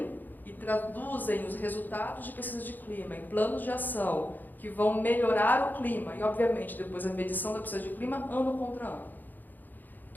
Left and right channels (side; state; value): right; late; 0.086 ms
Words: e traduzem os resultados de pesquisa de clima em planos de ação que vão melhorar o clima. E, obviamente, depois a medição da pesquisa de clima, ano contra ano.